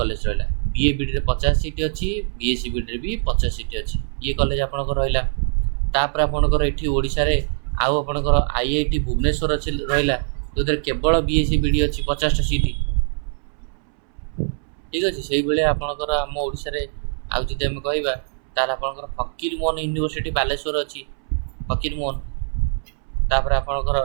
रहा। बीए बीडी 50 सीट अच्छी, बीएससी बीडी भी 50 सीट अच्छी। ये कॉलेज आपंकर रहा। तापर आपंकर ये ओडिशा रे आउ आपंकर आईआईटी भुवनेश्वर अच्छी रहा जो केवल बीएससी बीडी अच्छी 50 सीट। ठीक अच्छे से भाई आपंकर आम ओडिशा रे आउ जदि आम कहवा तार आपंकर फकीरमोहन यूनिवर्सिटी बालेश्वर अच्छी फकीरमोहन। तापर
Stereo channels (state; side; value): silent; left; 64 dB below the other